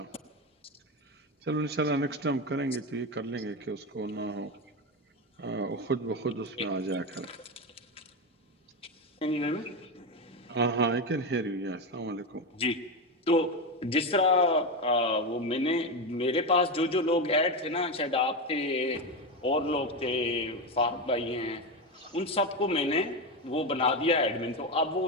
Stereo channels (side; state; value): both; normal; correlation 0.14